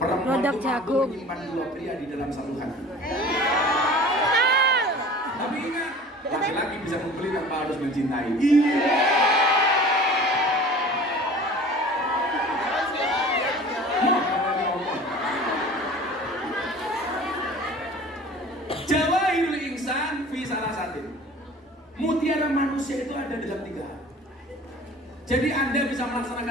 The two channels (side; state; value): both; normal; correlation 0.43